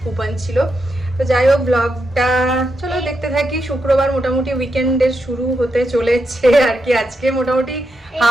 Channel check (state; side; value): normal; both; correlation 0.84